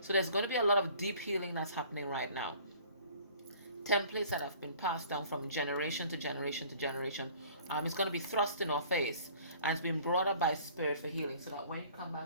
So there's going to be a lot of deep healing that's happening right now. Templates that have been passed down from generation to generation to generation. It's going to be thrust in our face, and it's been brought up by spirit for healing, so that when you come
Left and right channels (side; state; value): both; inverted; correlation -0.51